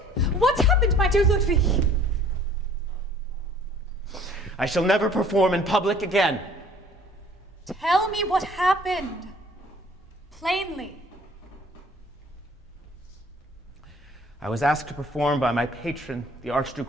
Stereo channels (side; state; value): both; normal; correlation 0.54